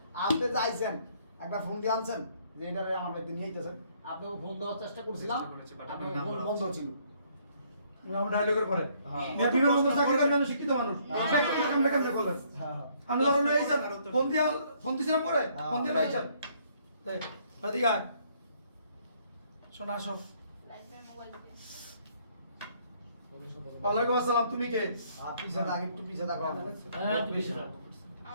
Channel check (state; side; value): inverted; both; correlation -0.66